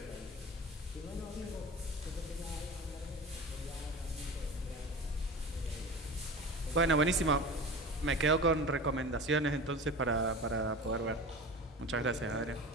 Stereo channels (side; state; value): both; normal; correlation 0.33